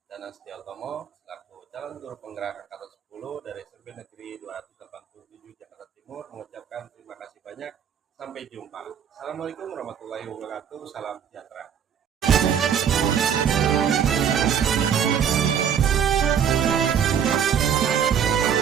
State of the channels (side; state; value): left; quieter; 8.2 dB